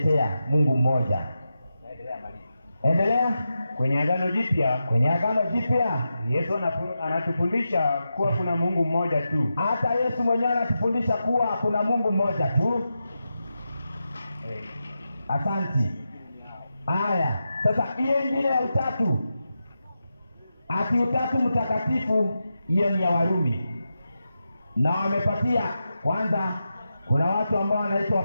Mungu mmoja. Endelea. Kwenye Agano Jipya Yesu anatufundisha kuwa kuna Mungu mmoja tu. Hata Yesu mwenyewe anatufundisha kuwa kuna Mungu mmoja tu. Asanti. Haya, sasa hiyo ingine ya utatu, ati utatu mtakatifu, hiyo ni ya Warumi, na wamepatia kwanza. Kuna watu ambao wanaitwa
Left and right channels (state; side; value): inverted; both; correlation -0.89